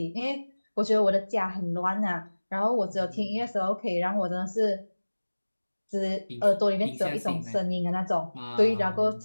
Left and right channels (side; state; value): both; inverted; correlation -1.00